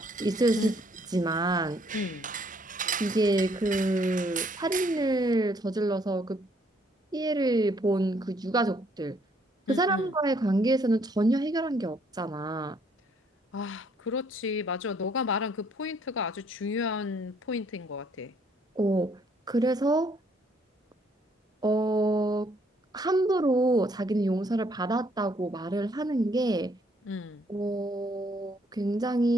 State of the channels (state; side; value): normal; both; correlation 0.66